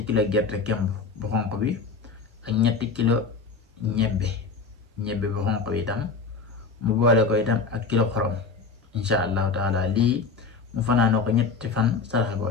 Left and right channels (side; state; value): right; quieter; 4.7 dB